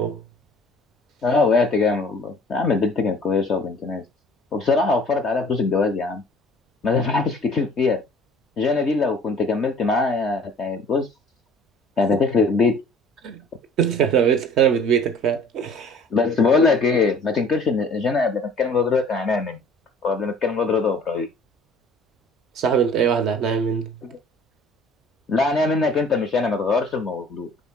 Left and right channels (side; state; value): both; normal; correlation 0.50